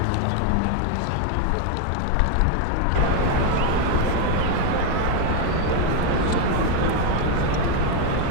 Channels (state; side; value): different; both; correlation 0.01